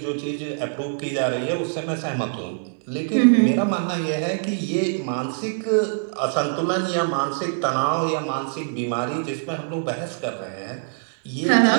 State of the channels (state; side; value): silent; left; digital silence